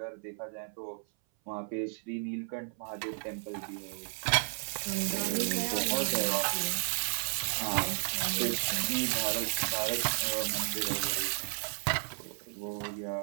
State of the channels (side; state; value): left; silent; 56 dB below the other